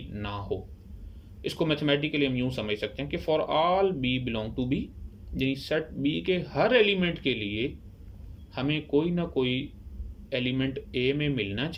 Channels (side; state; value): both; identical; correlation 1.00